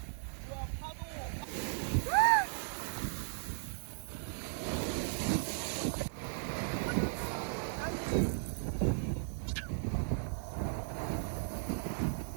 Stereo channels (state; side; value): silent; left; 53 dB below the other